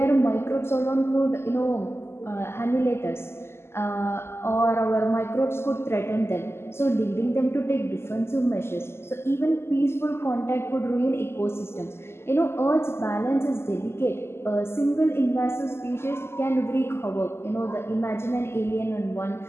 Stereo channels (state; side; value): late; right; 0.12 ms